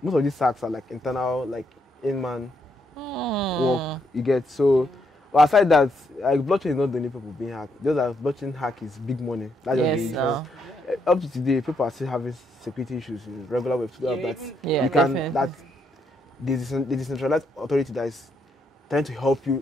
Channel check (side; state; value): both; normal; correlation 0.76